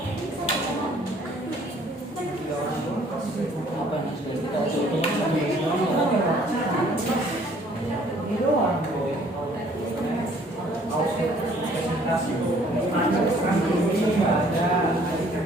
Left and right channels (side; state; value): both; normal; correlation 0.59